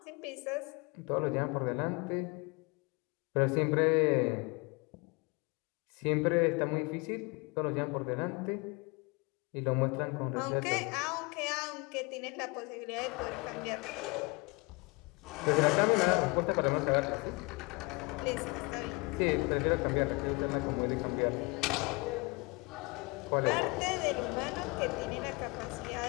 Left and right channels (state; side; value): quieter; right; 28.0 dB